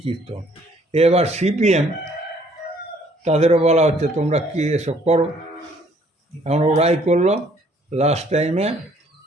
কীর্তন। এবার সিপিএম, তাদেরও বলা হচ্ছে তোমরা কি এসব করো। এখন ওরাই করলো। লাস্ট টাইমে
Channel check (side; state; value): both; normal; correlation 0.62